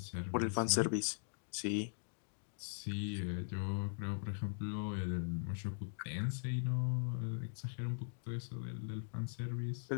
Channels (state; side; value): silent; right; digital silence